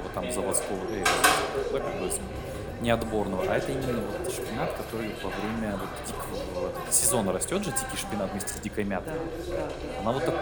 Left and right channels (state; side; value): identical; both; correlation 1.00